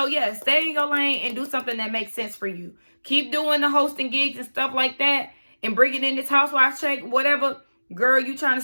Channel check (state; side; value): inverted; both; correlation -1.00